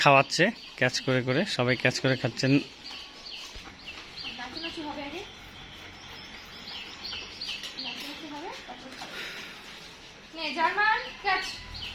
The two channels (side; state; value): both; identical; correlation 1.00